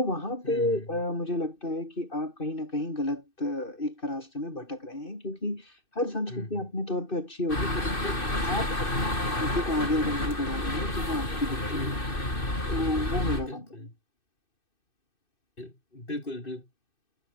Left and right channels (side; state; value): right; late; 2.6 ms